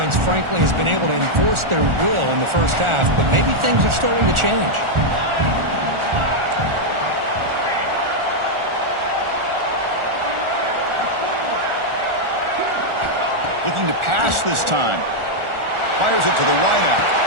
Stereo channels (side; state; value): left; late; 1.4 ms